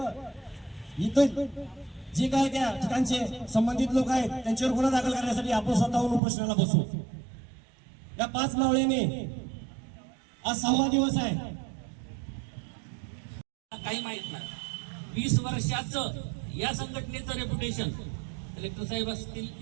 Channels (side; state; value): left; drops out; at 6.2 s